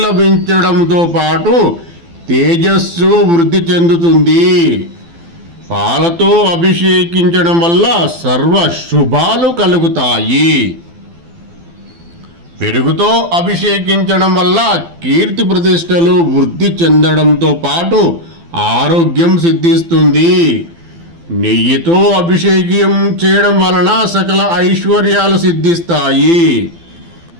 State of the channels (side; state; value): left; late; 12 ms